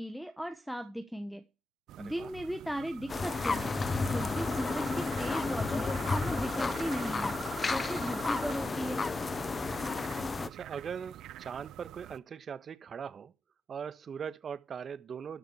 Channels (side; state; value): both; normal; correlation 0.89